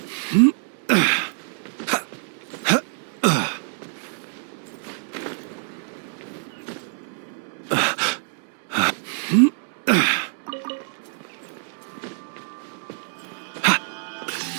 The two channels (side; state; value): left; silent; 62 dB below the other